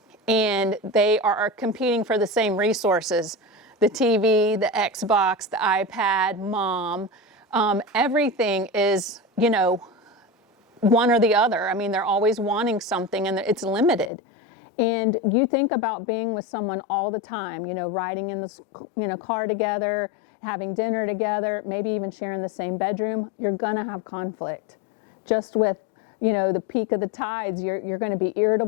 And they are competing for the same resources: the TV, the Xbox, the iPad, mom. Everything is, one or the other. I mean, they're always wanting something, and it's limited. And you think about being with someone all the time, riding in the car together, having dinner together, maybe even sharing the same bedroom. You're gonna have conflict. Just with the peak of the tides, you're going to be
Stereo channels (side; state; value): right; drops out; at 14.1 s